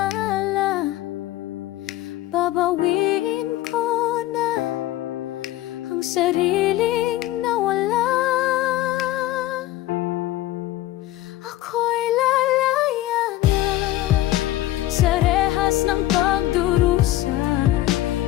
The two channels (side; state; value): right; quieter; 15.4 dB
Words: Babawiin ko na ang sariling nawala. Ako'y lalaya na sa rehas ng pagdurusa.